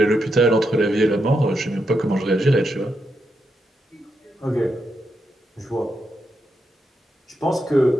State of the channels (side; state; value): both; normal; correlation 0.83